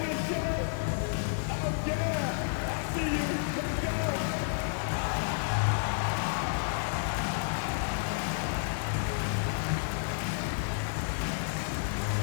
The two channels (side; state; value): right; silent; 57 dB below the other